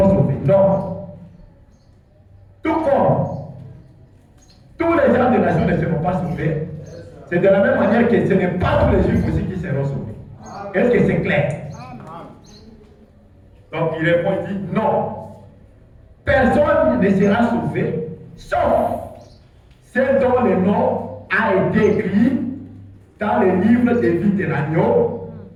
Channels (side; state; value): both; identical; correlation 1.00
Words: sauvés. Non. Tout comme tous les gens des nations ne seront pas sauvés, c'est de la même manière que ce n'est pas tous les Juifs aussi qui seront sauvés. Est-ce que c'est clair? Donc il répond, il dit non. Personne ne sera sauvé, sauf ceux dont le nom a été écrit dans le livre de vie de l'agneau